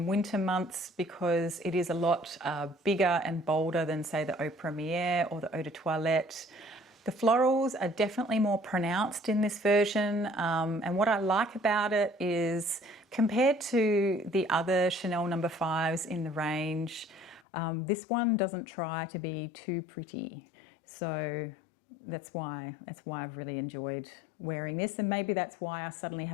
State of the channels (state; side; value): drops out; right; at 17.4 s